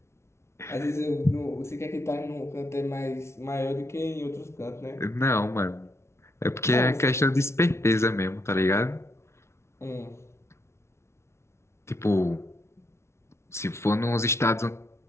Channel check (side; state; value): right; late; 0.13 ms